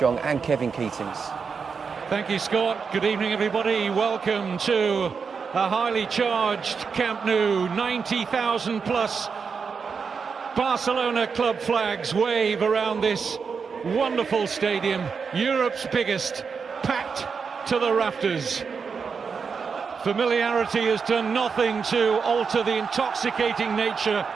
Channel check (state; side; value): quieter; left; 5.6 dB